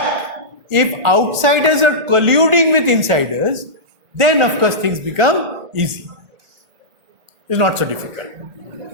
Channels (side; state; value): left; late; 1.9 ms